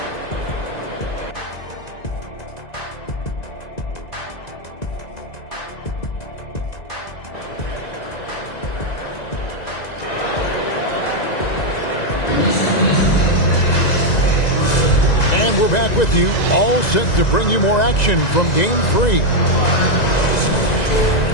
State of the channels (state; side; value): late; right; 2.0 ms